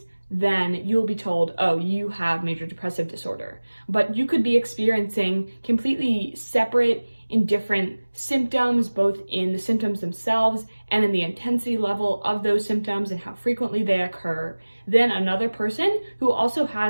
then you'll be told, oh, you have major depressive disorder. But you could be experiencing completely separate and different symptoms, both in the symptoms themselves and in the intensity level of those symptoms and how frequently they occur, than another person who also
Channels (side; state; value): both; inverted; correlation -1.00